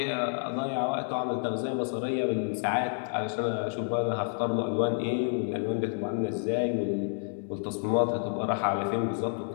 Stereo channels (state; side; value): silent; right; digital silence